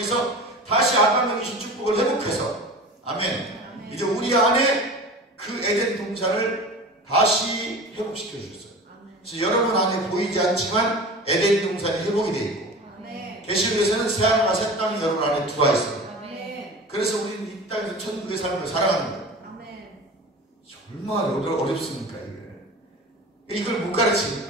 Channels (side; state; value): both; normal; correlation 0.35